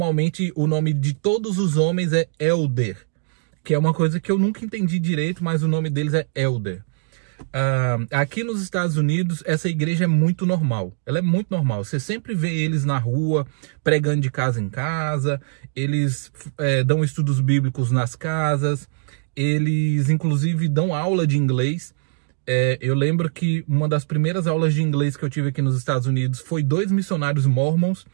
o nome de todos os homens é Elder, que é uma coisa que eu nunca entendi direito, mas o nome deles é Elder. Aqui nos Estados Unidos, essa igreja é muito normal. Ela é muito normal. Você sempre vê eles na rua, pregando de casa em casa. Eles dão estudos bíblicos nas casas. Eles, inclusive, dão aula de inglês. Eu lembro que uma das primeiras aulas de inglês que eu tive aqui nos Estados Unidos foi 2 missionários mormons.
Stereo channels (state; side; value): silent; left; digital silence